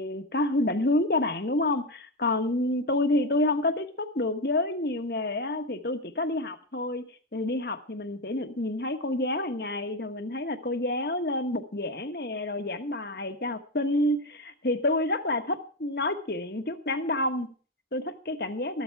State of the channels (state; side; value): normal; both; correlation 0.13